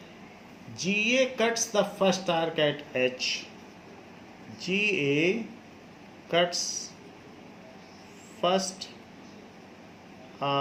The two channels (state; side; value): identical; both; correlation 1.00